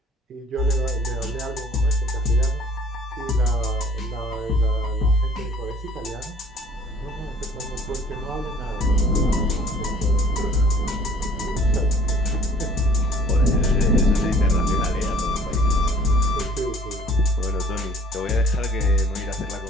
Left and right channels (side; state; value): both; normal; correlation 0.54